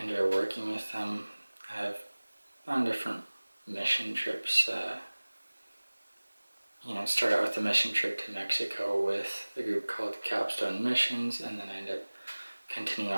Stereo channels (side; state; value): both; inverted; correlation -1.00